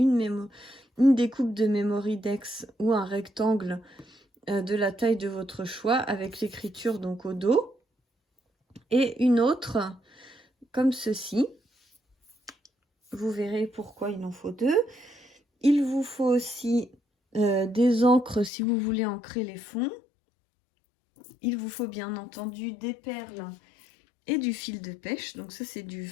découpe de Memorydex ou un rectangle de la taille de votre choix avec l'écriture donc au dos. Et une autre comme ceci. Vous verrez pourquoi il en faut deux. Il vous faut aussi des encres si vous voulez ancrer les fonds. Il vous faut bien entendu des perles et du fil de pêche. Donc ça c'est du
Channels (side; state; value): right; drops out; at 18.5 s